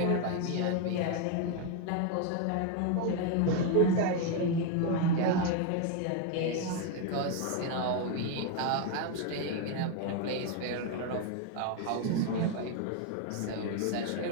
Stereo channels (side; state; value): both; different; correlation 0.01